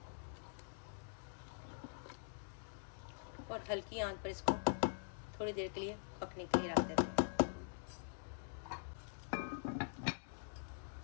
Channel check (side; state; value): right; silent; digital silence